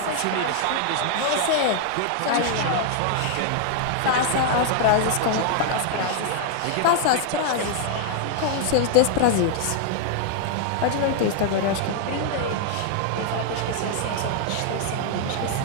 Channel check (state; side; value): different; both; correlation 0.00